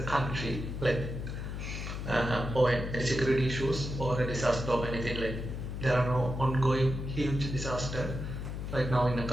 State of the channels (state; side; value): noise; left; hum, 5 dB below the sound